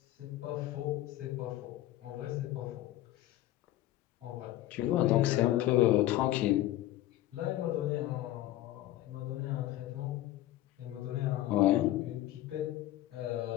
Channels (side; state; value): right; quieter; 14.6 dB